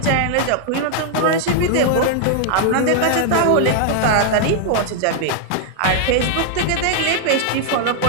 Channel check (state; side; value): different; both; correlation 0.00